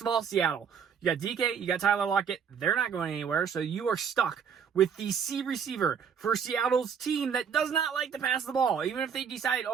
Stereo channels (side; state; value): left; quieter; 7.1 dB